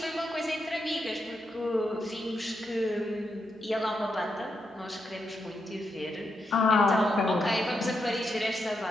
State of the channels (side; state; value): both; normal; correlation 0.83